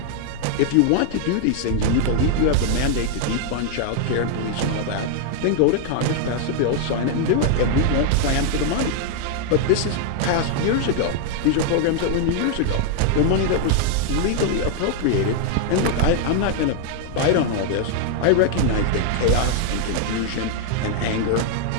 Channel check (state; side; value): different; both; correlation 0.00